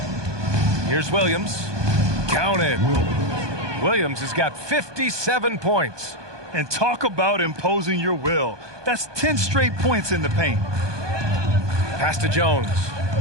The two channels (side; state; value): left; late; 1.2 ms